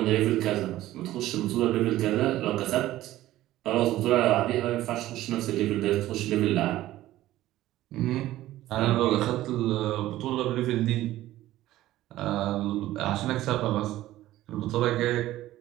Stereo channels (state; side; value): quieter; left; 15.1 dB